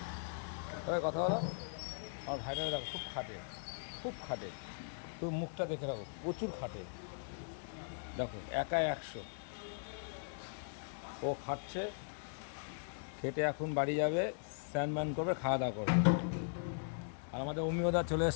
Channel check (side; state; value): right; silent; digital silence